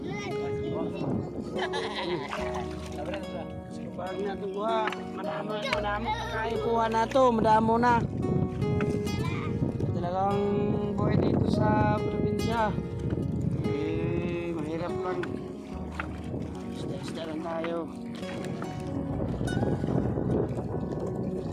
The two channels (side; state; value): both; identical; correlation 1.00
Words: Pag natuwa, madamo kayo kuha na to, madamo na. Talagang buhay dito sa probinsya. Mahirap lang. Isda lang tayo.